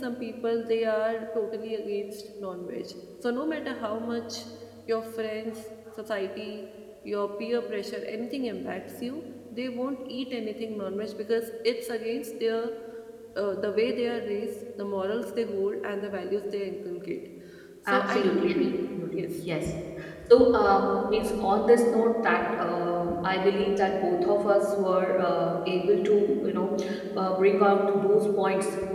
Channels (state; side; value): identical; both; correlation 1.00